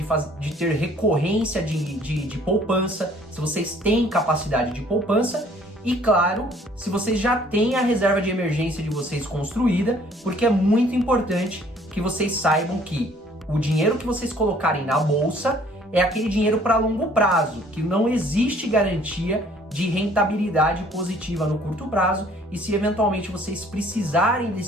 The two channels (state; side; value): normal; both; correlation 0.58